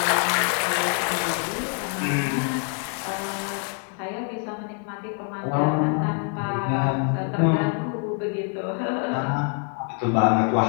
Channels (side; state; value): right; quieter; 39.3 dB